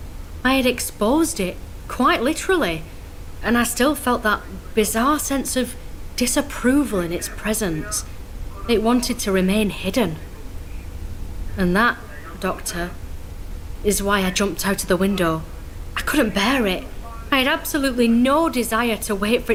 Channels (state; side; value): identical; both; correlation 1.00